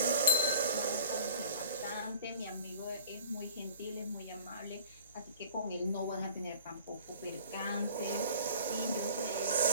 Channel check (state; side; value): inverted; both; correlation -0.49